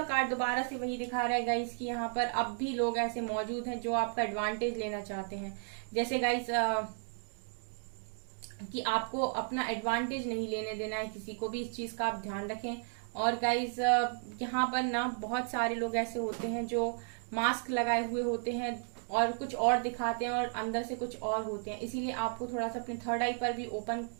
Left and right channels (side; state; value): left; silent; digital silence